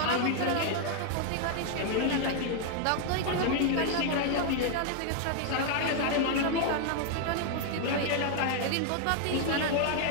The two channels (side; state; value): both; different; correlation 0.00